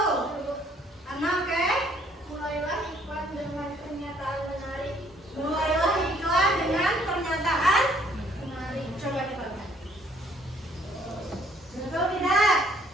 Ana, oke? Mulailah iklan dengan pernyataan menarik. Mulailah iklan dengan pernyataan Menarik. Coba kita lihat. Betul tidak?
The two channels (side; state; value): both; normal; correlation 0.63